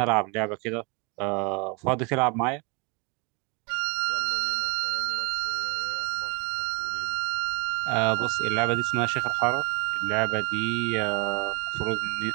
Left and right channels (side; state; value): left; quieter; 32.5 dB